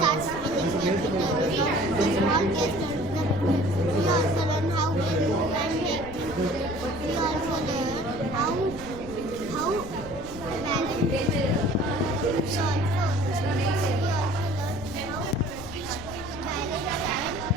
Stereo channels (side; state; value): left; noise; rumble, 14 dB below the sound